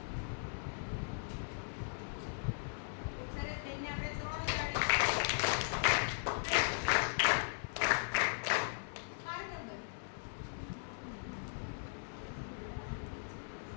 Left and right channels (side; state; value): right; silent; 52 dB below the other